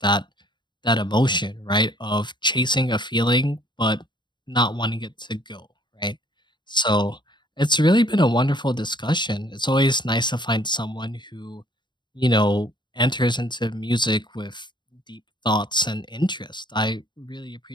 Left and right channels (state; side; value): late; right; 0.22 ms